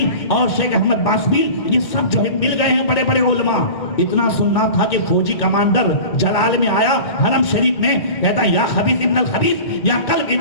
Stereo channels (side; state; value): right; late; 2.1 ms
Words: اور شیخ احمد باسبیل, یہ سب جو ہے مل گئے ہیں بڑے بڑے علماء. اتنا سننا تھا کہ فوجی کمانڈر جلال میں آیا حرم شریف میں, کہتا یا خبیث ابن الخبیث یا کلب